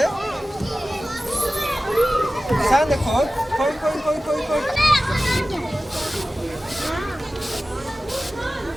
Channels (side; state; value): both; normal; correlation 0.96